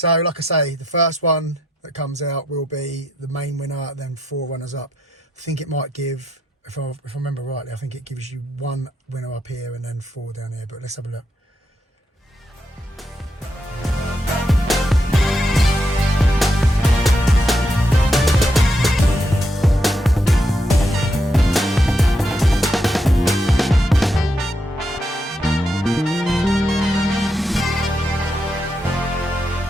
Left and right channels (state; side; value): normal; both; correlation 0.80